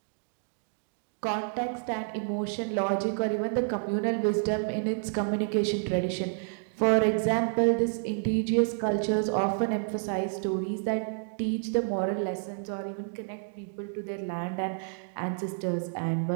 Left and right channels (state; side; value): silent; left; digital silence